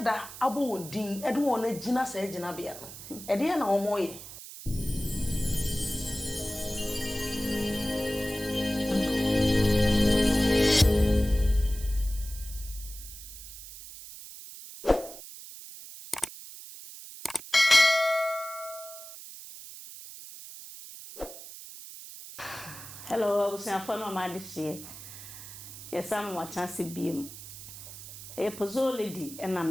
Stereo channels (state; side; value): noise; right; hiss, 13 dB below the sound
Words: abo wondin e de won agina sa agina bia no e de na wo moye. Hello, I was saying for my this year. Yes, I'm watching CBM. A puzzle lady, and